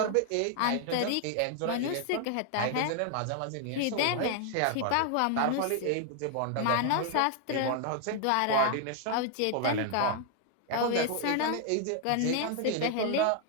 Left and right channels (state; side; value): different; both; correlation 0.00